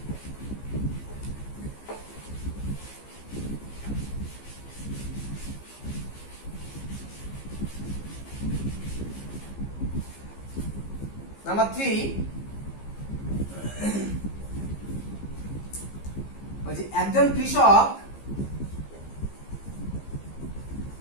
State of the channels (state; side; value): late; right; 15 ms